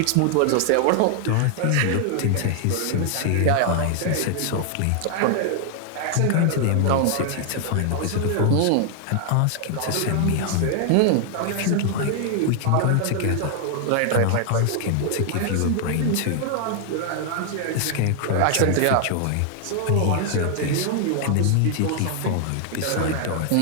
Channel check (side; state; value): both; different; correlation 0.00